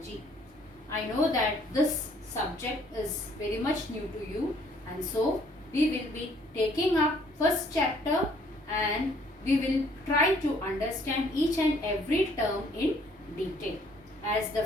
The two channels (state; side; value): normal; both; correlation 0.62